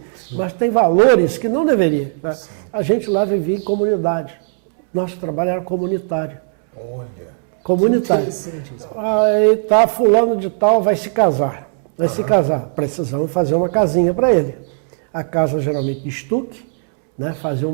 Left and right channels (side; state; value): left; silent; 68 dB below the other